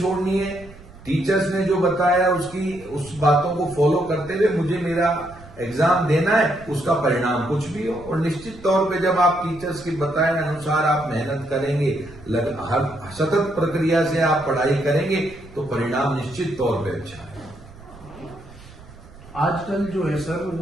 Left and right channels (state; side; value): noise; right; rumble, 20 dB below the sound